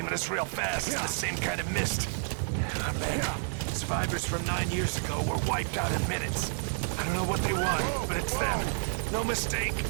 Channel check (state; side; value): silent; left; 58 dB below the other